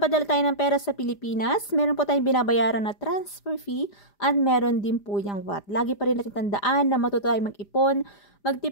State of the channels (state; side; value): late; right; 5.0 ms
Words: tayo ng pera sa Pilipinas, meron po tayong binabayaran na transfer fee at meron din po yung VAT. Lagi pa rin natin tandaan na matuto tayong mag-ipon,